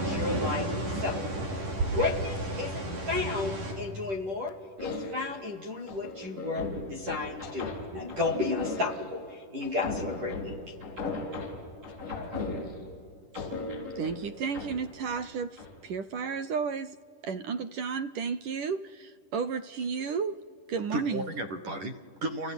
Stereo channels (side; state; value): left; late; 10 ms